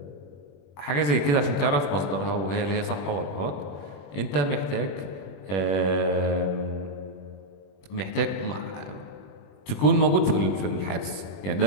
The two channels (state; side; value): late; right; 21 ms